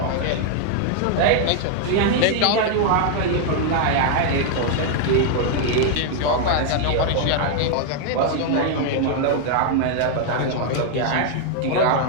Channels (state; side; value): different; both; correlation 0.00